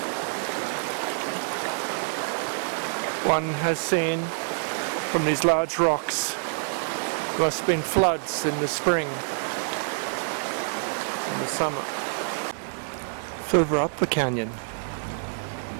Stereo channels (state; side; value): silent; left; 60 dB below the other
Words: One has seen from these large rocks there must have been floods in the spring and the summer. Further up the canyon